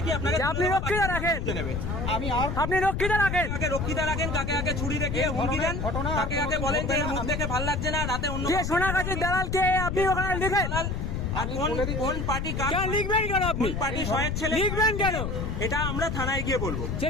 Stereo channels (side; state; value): left; noise; rumble, 2 dB below the sound